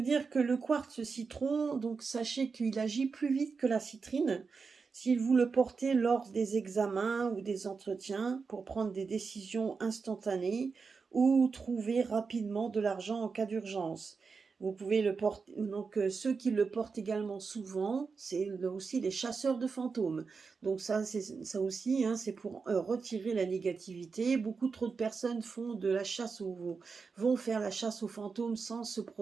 dire que le quartz citron, donc sachez qu'il agit plus vite que la citrine. Si vous le portez lors des examens ou des entretiens pour prendre des décisions instantanées ou trouver rapidement de l'argent en cas d'urgence. Vous pouvez le porter, donc ceux qui le portent également souvent, c'est aussi les chasseurs de fantômes. Donc ça aussi, hein, c'est pour retirer la négativité. Beaucoup trop de personnes font de la chasse vont faire la chasse aux fantômes sans se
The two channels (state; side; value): quieter; left; 5.0 dB